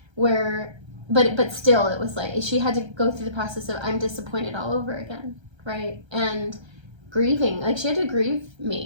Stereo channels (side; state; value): left; late; 1.3 ms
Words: where but still it was like she had to go through the process of I'm disappointed all over again, right? And grieving, like she had to grieve